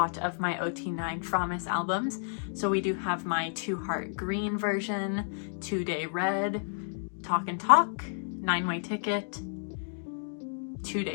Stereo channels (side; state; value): right; silent; digital silence